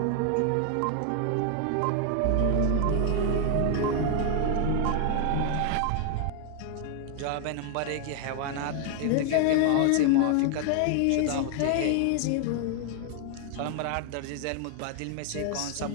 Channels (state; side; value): different; both; correlation 0.00